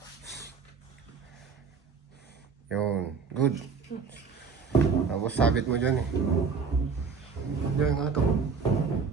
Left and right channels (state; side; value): quieter; left; 5.5 dB